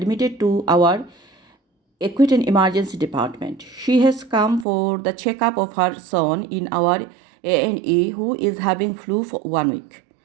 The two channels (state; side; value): drops out; left; at 4.7 s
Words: to our acute and emergency department. She has come for the checkup of her son in our A&E who is having flu for 1 week,